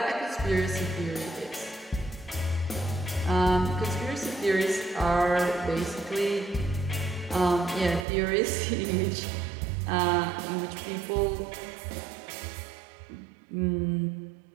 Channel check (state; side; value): drops out; left; at 8.1 s